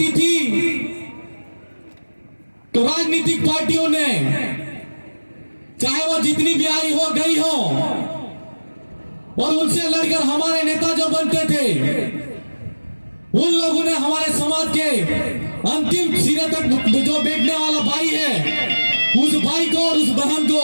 थी, तो राजनीतिक पार्टियों ने, चाहे वो जितनी भी आई हो गई हो, और उनसे लड़कर हमारे नेता जो बनते थे, उन लोगों ने हमारे समाज के अंतिम सिरे तक जो बैठने वाला भाई है, उस भाई को और उस बहन को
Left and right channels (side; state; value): both; inverted; correlation -1.00